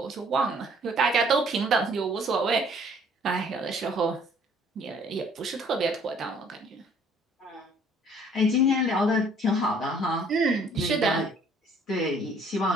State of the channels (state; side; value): normal; both; correlation 0.58